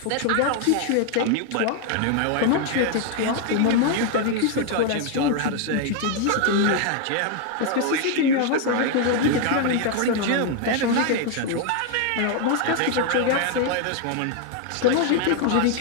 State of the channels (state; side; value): different; both; correlation 0.01